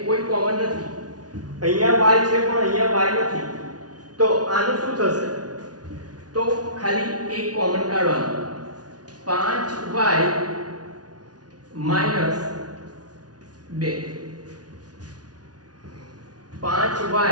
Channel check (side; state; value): left; late; 0.69 ms